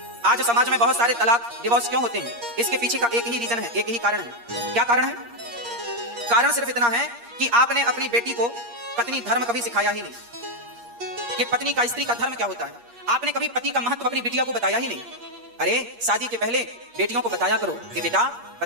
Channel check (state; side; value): late; left; 8.5 ms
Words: आज समाज में बहुत सारे तलाक डिवोर्स क्यों होते हैं? इसके पीछे का एक ही रीजन है, एक ही कारण है। क्या कारण है? कारण सिर्फ इतना है कि आपने अपनी बेटी को पत्नी धर्म कभी सिखाया ही नहीं कि पत्नी का, स्त्री का धर्म क्या होता है। आपने कभी पति का महत्व अपनी बिटिया को बताया ही नहीं। अरे शादी के पहले बेटियों को बताया करो कि बेटा